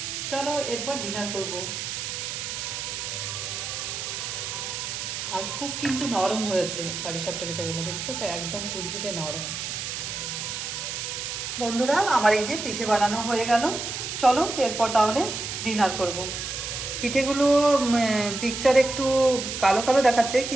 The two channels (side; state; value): right; noise; hiss, 5 dB below the sound